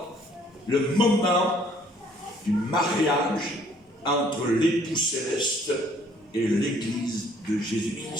le moment du mariage entre l'époux céleste et l'Église de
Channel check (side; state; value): both; normal; correlation 0.61